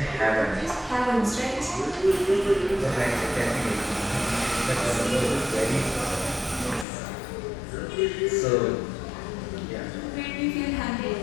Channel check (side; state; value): right; drops out; at 6.9 s